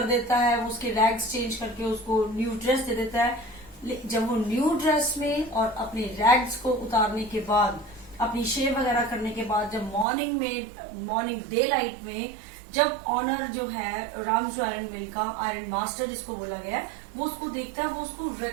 देता है, वो उसके रैग्स चेंज करके उसको न्यू ड्रेस दे देता है। जब वो न्यू ड्रेस में और अपने रैग्स को उतारने के बाद, अपनी शेव वगैरह करने के बाद, जब मॉर्निंग डे लाइट में जब ऑनर जो है रामजो आयरन मिल का आयरन मास्टर जिसको बोला गया है वो उसको देखता है, वो उसको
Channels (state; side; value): drops out; left; at 10.1 s